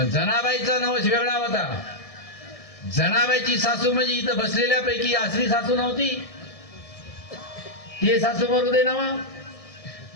जनाबाईचा नवस वेगळा होता. जनाबाईची सासू म्हणजे इथं बसलेल्यापैकी असली सासू नव्हती. ते सासू मरू दे नाव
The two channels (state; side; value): late; right; 1.6 ms